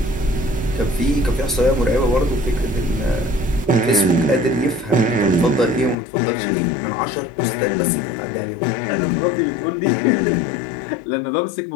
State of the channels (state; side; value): drops out; right; at 6.0 s